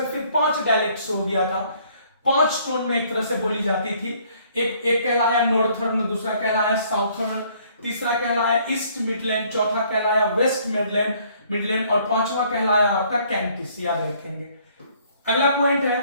फिर 5 डायलेक्ट्स हो गया था। 5 टोन में एक तरह से बोली जाती थी। एक कहलाया नॉर्थर्न, दूसरा कहलाया साउथर्न, तीसरा कहलाया ईस्ट मिडलैंड, चौथा कहलाया वेस्ट मिडलैंड और पांचवा कहलाया आपका कैंटिस, याद रखेंगे। अगला पॉइंट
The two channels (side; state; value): both; inverted; correlation -0.62